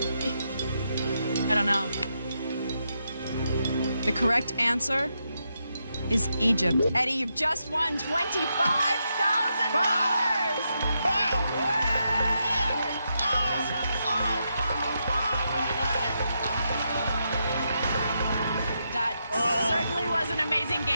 I don't know. The correct answer is Egypt. Eddie, you've just won $25,000! That certainly was an amazing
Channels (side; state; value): both; inverted; correlation -0.83